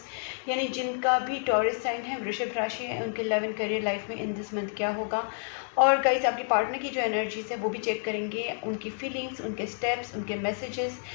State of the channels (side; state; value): right; silent; digital silence